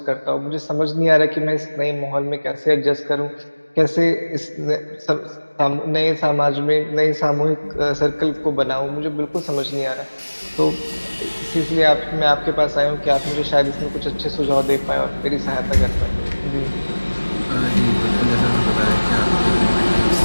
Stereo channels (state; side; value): inverted; both; correlation -1.00